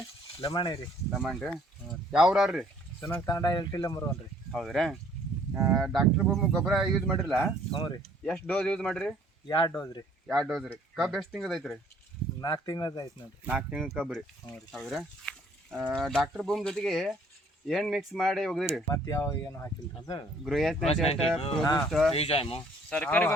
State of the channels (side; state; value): both; normal; correlation 0.60